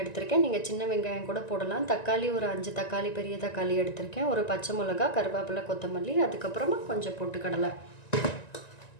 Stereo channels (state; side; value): late; right; 1.9 ms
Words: எடுத்திருக்கேன். நீங்கள் சின்ன வெங்காயம் கூட போடலாம். தக்காளி ஒரு 5 தக்காளி பெரிய தக்காளி எடுத்திருக்கேன். ஒரு பச்சை மிளகா, கருவேப்பிலை, கொத்தமல்லி, அதுக்கப்புறமா கொஞ்சம் பொட்டுக்கடலை.